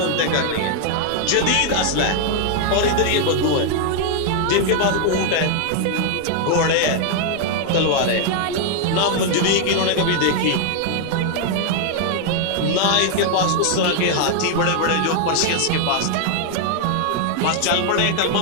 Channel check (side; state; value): both; different; correlation 0.00